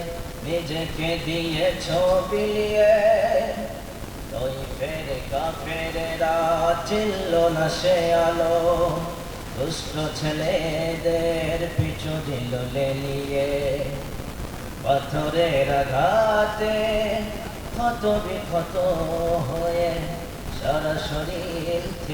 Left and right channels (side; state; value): both; identical; correlation 1.00